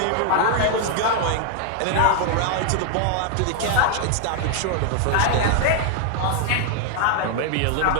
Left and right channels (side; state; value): both; different; correlation 0.00